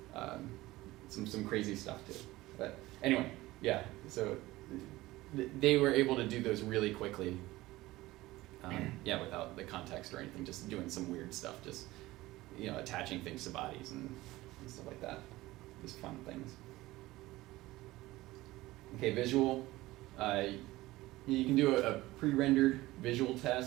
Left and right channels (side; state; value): left; quieter; 18.3 dB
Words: Some crazy stuff too. But anyway, yeah, so they were able to do those really quickly. Without the context or anything, just doing some weird stuff, just, you know, attaching things to bodies and stuff like that. Just fun things. Okay, visual. You can do a pre-rendered visual